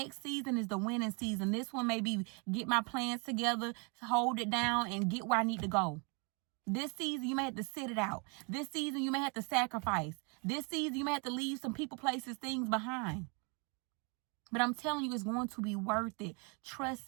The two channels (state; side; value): quieter; left; 33.6 dB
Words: season is the winning season. This one may be get my plans together, hold it down, and get where I need to go. This season, you may have to sit it out. This season, you may have to sacrifice. This season, you may have to leave some people, places, things behind. But I'm telling you, it's going to be worth it. Trust